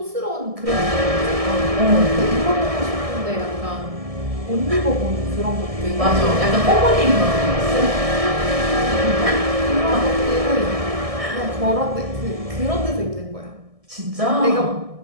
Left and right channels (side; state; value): left; late; 1.6 ms